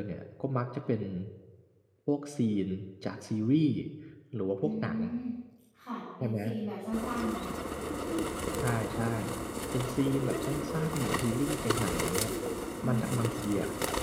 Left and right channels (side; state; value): both; identical; correlation 1.00